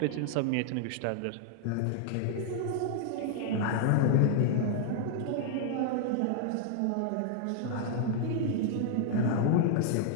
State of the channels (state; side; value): different; both; correlation 0.00